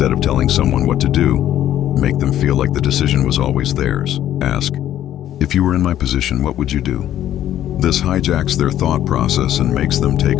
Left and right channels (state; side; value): quieter; right; 11.8 dB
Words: of telling someone what to do, make them feel like the decision was always theirs. Ask, "If you were in my position, what would you do?" This hijacks their thought process and makes them